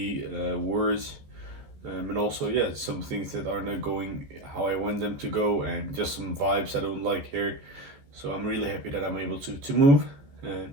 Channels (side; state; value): left; late; 14 ms